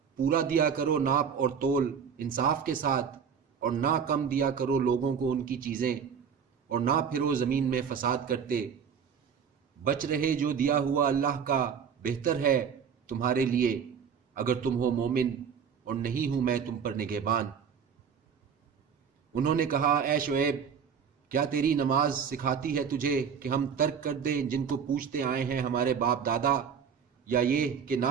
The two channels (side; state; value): left; quieter; 7.0 dB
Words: پورا دیا کرو ناپ اور تول انصاف کے ساتھ، اور نہ کم دیا کرو لوگوں کو ان کی چیزیں، اور نہ پھرو زمین میں فساد کرتے، بچ رہے جو دیا ہوا اللہ کا بہتر ہے تمہارے لیے اگر تم ہو مومن، اور نہیں ہوں میں تم پر نگہبان۔ انہوں نے کہا اے شعیب، کیا تیری نماز سکھاتی ہے تجھے کہ ہم ترک کر دیں جن کو پوچھتے آئے ہیں ہمارے باپ دادا، یا یہ کہ